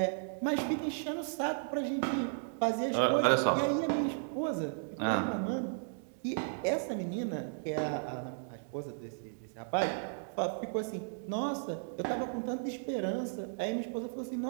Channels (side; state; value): left; silent; digital silence